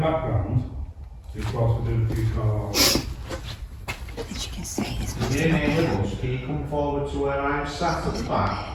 background. Just whilst we're doing a few calls. As you can see, it's If you're in here with us, can you come forward to where I'm sat at the back?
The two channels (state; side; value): identical; both; correlation 1.00